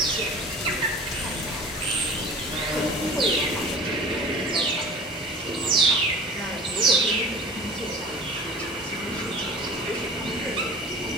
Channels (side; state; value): both; normal; correlation 0.40